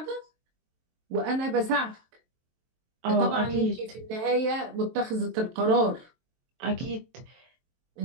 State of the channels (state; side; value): late; left; 23 ms